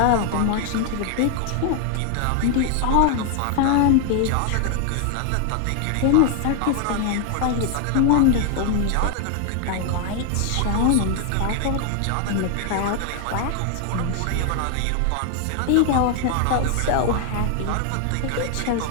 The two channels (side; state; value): both; different; correlation 0.00